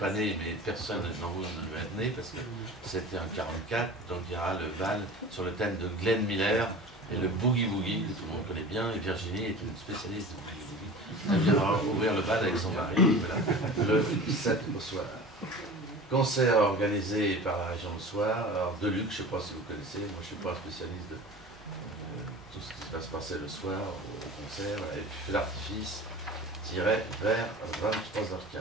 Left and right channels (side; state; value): both; normal; correlation 0.37